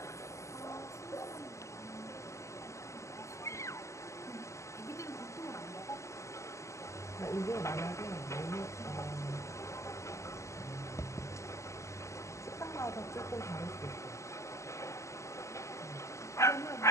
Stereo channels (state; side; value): late; right; 0.14 ms